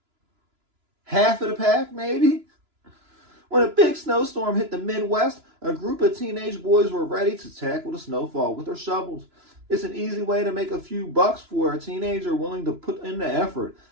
Half of the pack, maybe? When a big snowstorm hit the Midwest, a group of teenage boys were ready to tackle the snowfall with their shovels. It's an easy way to make a few bucks for a teenager willing to put in the effort.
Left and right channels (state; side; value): late; left; 2.9 ms